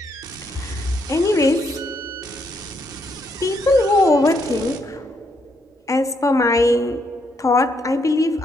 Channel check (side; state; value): both; normal; correlation 0.75